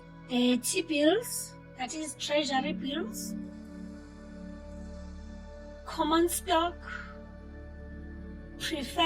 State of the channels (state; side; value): identical; both; correlation 1.00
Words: the T-bills, that is treasury bills, common stock,